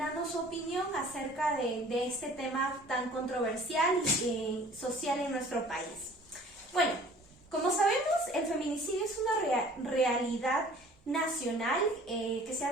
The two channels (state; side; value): normal; both; correlation 0.50